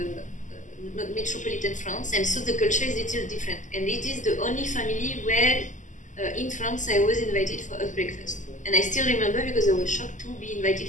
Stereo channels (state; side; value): late; right; 0.37 ms